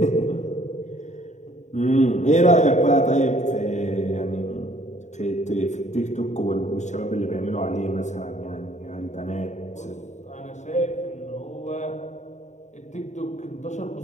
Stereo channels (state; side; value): late; right; 0.34 ms